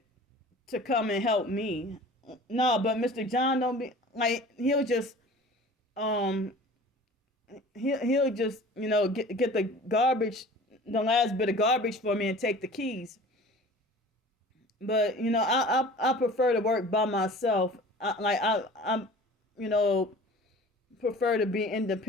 to come and help me. No, but Mr. John don't be like, he'll just he'll just get the garbage, the last bit of garbage for me and take the keys. But I prefer to work by myself. I'm prefer to be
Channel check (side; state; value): both; normal; correlation 0.43